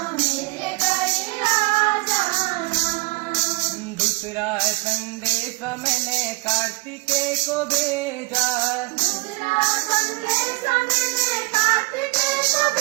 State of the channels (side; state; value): left; quieter; 27.8 dB